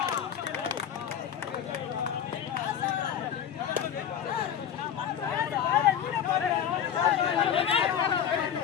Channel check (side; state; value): right; quieter; 9.0 dB